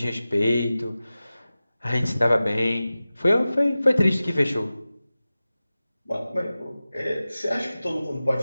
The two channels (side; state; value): both; inverted; correlation -0.96